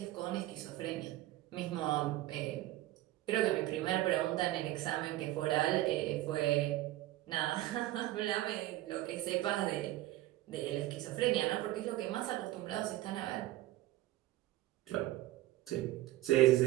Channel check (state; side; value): quieter; left; 16.2 dB